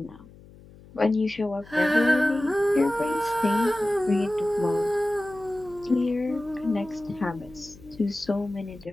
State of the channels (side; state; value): left; noise; hum, 22 dB below the sound